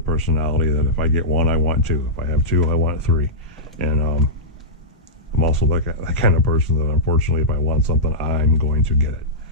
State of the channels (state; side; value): normal; both; correlation -0.13